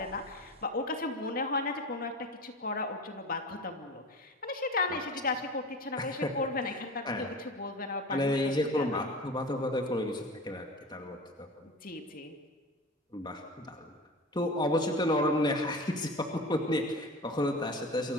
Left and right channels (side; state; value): both; normal; correlation 0.33